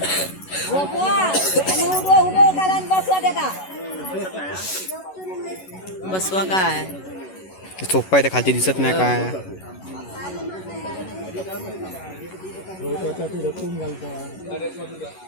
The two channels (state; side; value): late; right; 11 ms